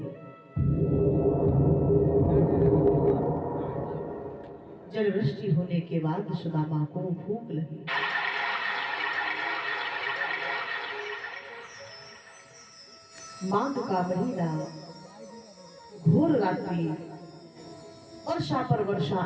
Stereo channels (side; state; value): both; identical; correlation 1.00